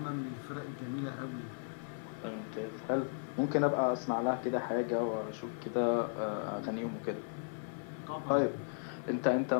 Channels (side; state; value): right; silent; 54 dB below the other